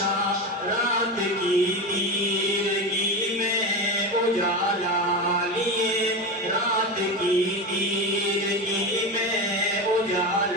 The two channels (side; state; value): both; normal; correlation 0.21